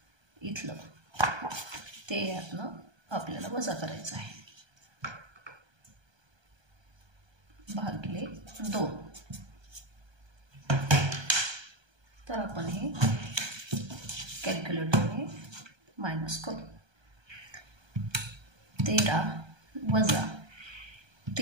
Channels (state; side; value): late; left; 1.3 ms